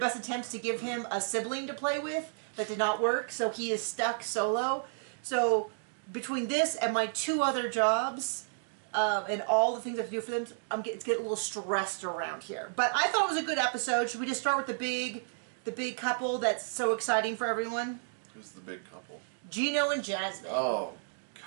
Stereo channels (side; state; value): left; silent; digital silence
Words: attempts to give him a sibling to play with, that did not work, so he is stuck solo. So between this and my 2 other jobs, and all the things I have to do for them, it's getting a little stressed around here. But I thought it was a good episode. Should we just start with the big couple that's so exciting for everyone? Who's the big couple? Gino and Jasmine. Oh,